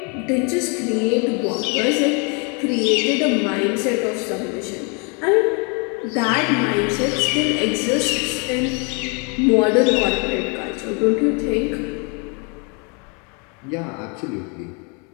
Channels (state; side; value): quieter; right; 34.5 dB